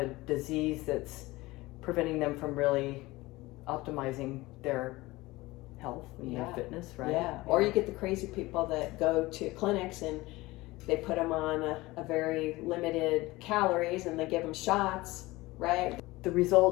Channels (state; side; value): quieter; right; 20.2 dB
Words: disease that's preventing them from really optimizing their health and their fitness, right? Yeah. Or you get the crazy people that go to clinics and they put them on a very limited calories, and they give them shots, right? The